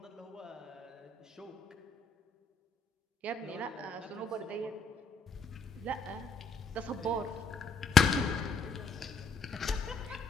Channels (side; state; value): right; quieter; 4.1 dB